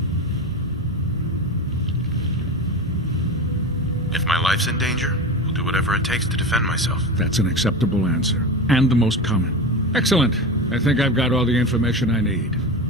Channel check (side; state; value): both; normal; correlation 0.24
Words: if my life's in danger, I'll do whatever it takes to defend myself. That's an acceptable answer, and the most common. Excellent. I think I've got all the information I need.